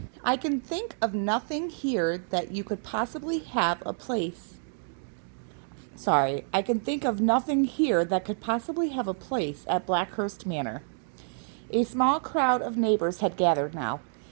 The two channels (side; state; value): left; silent; digital silence